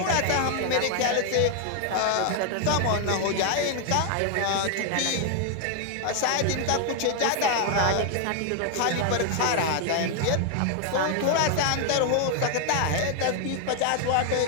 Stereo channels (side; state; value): both; different; correlation 0.00